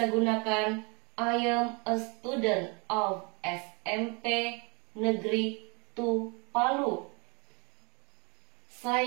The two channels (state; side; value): quieter; left; 31.3 dB